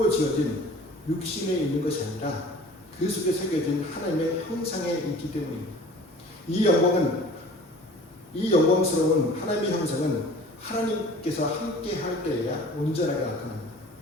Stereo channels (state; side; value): normal; both; correlation 0.45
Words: 지어진 육신에 있는 것이 아니라 그 속에 새겨진 하나님의 형상에 있기 때문입니다. 이 영광스러운 하나님의 형상은 하나님께서 함께 할 때에야 온전하게 나타납니다.